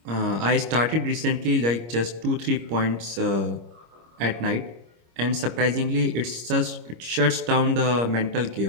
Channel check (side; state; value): left; late; 26 ms